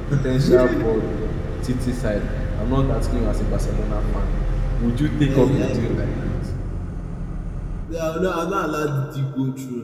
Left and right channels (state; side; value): identical; both; correlation 1.00